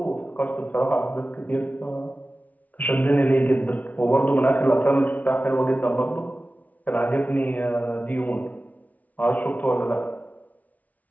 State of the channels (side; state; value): right; late; 0.073 ms